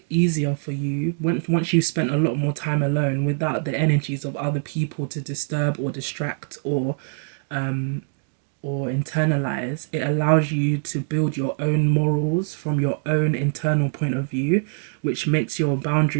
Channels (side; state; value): left; silent; digital silence